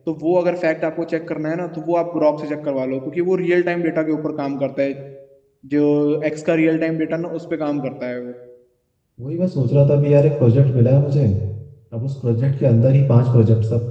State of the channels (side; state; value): both; identical; correlation 1.00